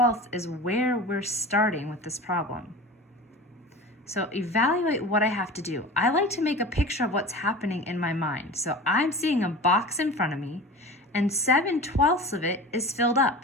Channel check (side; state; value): both; normal; correlation 0.34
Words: is where we're starting with this problem. So evaluate what I have to do. I like to make a picture of what's happening in my mind. So I'm seeing a box in front of me and 7/12 of it is filled